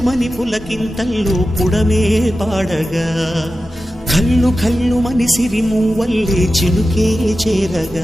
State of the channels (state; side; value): normal; both; correlation 0.93